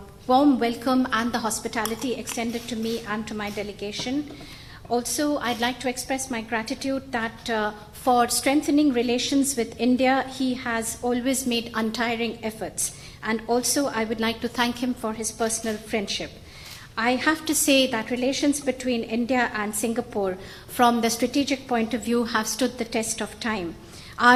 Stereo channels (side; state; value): both; identical; correlation 1.00